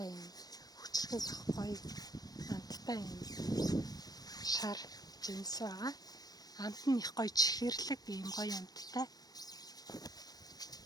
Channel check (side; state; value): right; late; 0.19 ms